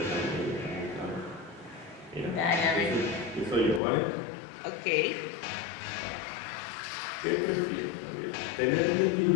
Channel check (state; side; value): drops out; right; at 3.8 s